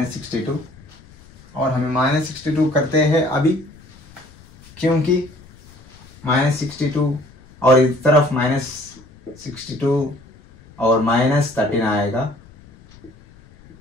और हमें -62 करते हैं अभी, क्योंकि -62 और इस तरफ -62 और -13 आएगा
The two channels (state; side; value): noise; left; rumble, 24 dB below the sound